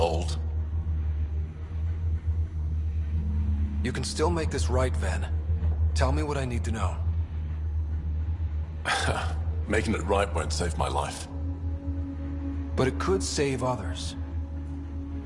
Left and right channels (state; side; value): identical; both; correlation 1.00